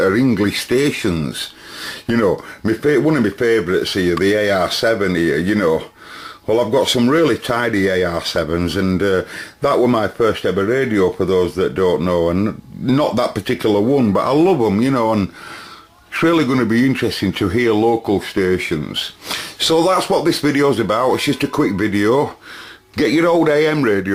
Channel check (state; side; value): identical; both; correlation 1.00